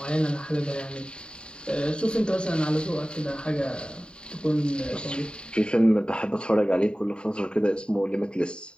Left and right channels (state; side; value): late; right; 0.050 ms